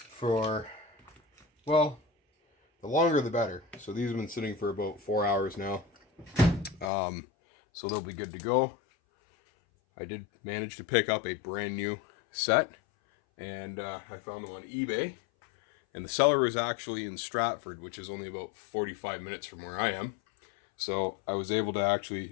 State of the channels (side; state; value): right; drops out; at 6.9 s